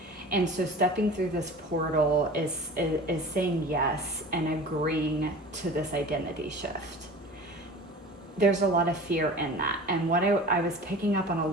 And so stepping through this portal is saying yes and agreeing to this identity shift. There's a lot of fear in that. And what I was picking up on a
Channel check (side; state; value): both; normal; correlation 0.38